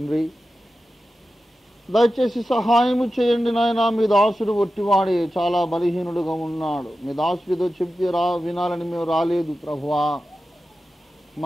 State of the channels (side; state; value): both; normal; correlation 0.93